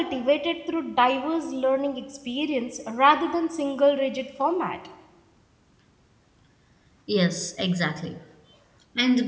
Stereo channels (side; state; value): both; identical; correlation 1.00